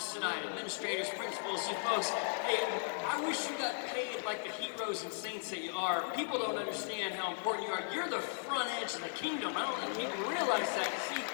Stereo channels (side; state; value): right; silent; digital silence